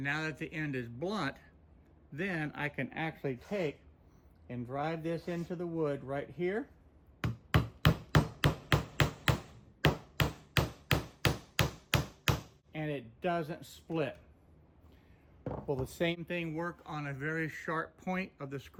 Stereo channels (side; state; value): both; identical; correlation 1.00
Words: that the end is blunt, then I can actually take and drive this into the wood right here. And it doesn't split. Will the same thing work on a very sharp point of the